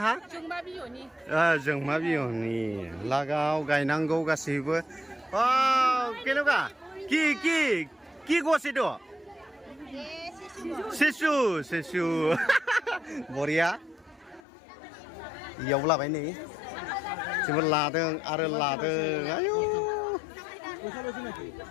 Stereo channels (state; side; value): drops out; right; at 14.4 s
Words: जोंमा बिहनि लागाव गायनांगौ गासैबो केनेका কি গছ এইটো চেচু बरिया इयाव लाबाय नै जोबोर लादों आरो लादों आयु